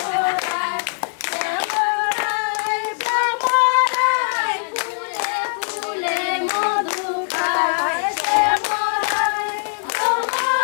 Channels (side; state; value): right; silent; 63 dB below the other